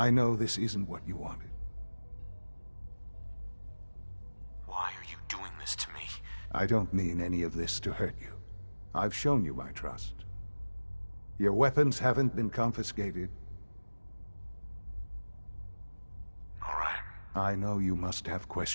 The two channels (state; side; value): inverted; both; correlation -1.00